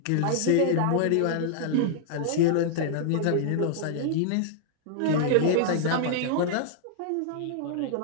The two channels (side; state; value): both; different; correlation -0.01